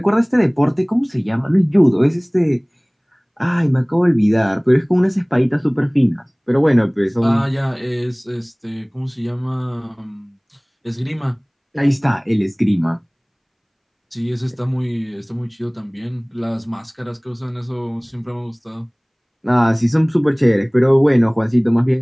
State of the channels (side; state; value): both; identical; correlation 1.00